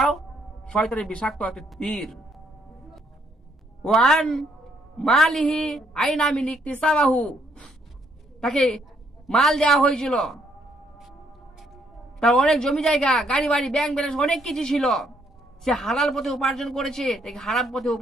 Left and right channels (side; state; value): both; normal; correlation 0.70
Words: শয়তানের বিষাক্ত একটা তীর। ওয়ান মালিহি আইনা মিন ইকতিসাবাহু, তাকে মাল দেওয়া হয়েছিল, তার অনেক জমি জায়গা, গাড়ি বাড়ি, ব্যাংক ব্যালেন্স অনেক কিছু ছিল, সে হালাল পথে উপার্জন করেছে নাকি হারাম পথে